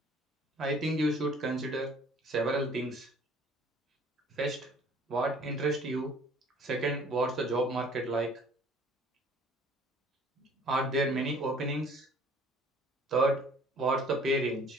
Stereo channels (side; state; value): both; normal; correlation 0.53